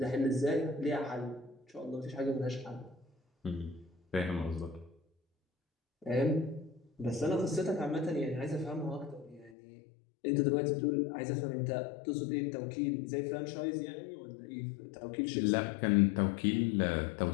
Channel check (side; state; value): right; drops out; at 9.5 s